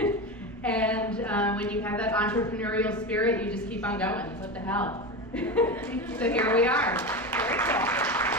And when you have that entrepreneurial spirit, you just keep on going. What the hell? So here we are. Very cool.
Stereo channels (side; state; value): both; normal; correlation 0.22